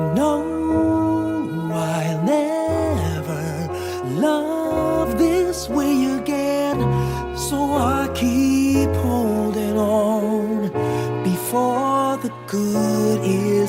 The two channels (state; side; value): identical; both; correlation 1.00